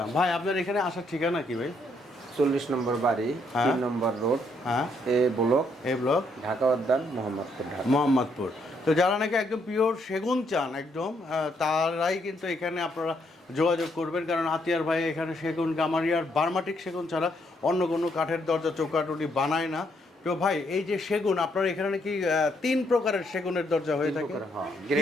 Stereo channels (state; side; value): normal; both; correlation 0.73